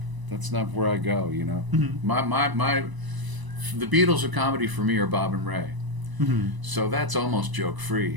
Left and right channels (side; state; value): left; late; 1.0 ms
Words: where I go, Mm-hmm. The Beatles of comedy for me are Bob and Ray. Mm-hmm. So that's almost joke